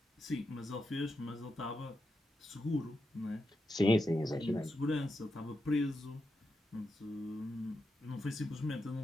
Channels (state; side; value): normal; both; correlation 0.86